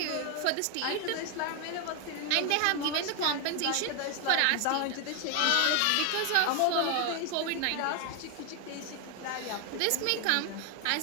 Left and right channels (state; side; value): different; both; correlation 0.00